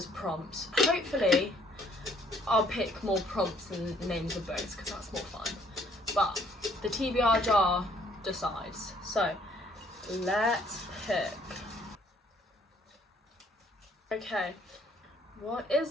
prompts. Hopefully I'll pick more prompts than names of books because that's more fun, but the TBR jar decides. So Let's pick. Okay, what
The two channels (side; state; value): both; normal; correlation 0.63